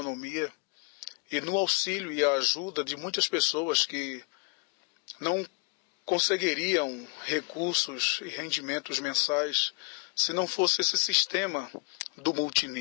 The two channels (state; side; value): quieter; right; 31.0 dB